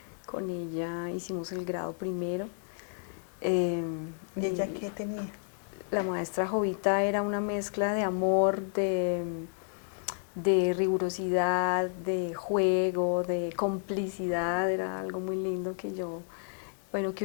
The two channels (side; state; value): right; silent; digital silence